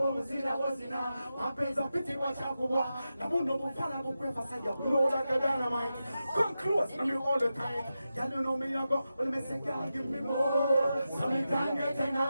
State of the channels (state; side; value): inverted; both; correlation -0.91